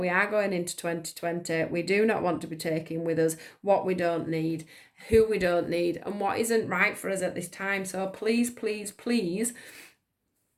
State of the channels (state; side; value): identical; both; correlation 1.00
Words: are going into 2020. We do not want to be taking with us what we don't need, who we don't need, and what isn't right for us at this time. So please, please, please,